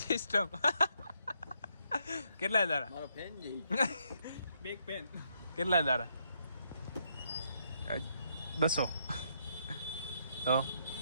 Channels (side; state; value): both; inverted; correlation -0.75